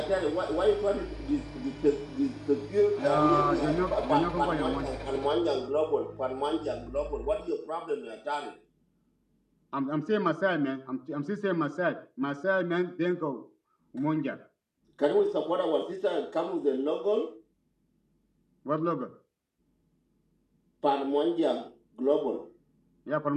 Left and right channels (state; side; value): identical; both; correlation 1.00